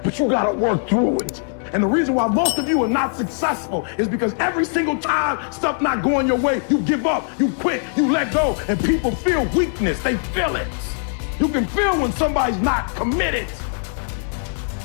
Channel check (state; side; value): silent; right; 57 dB below the other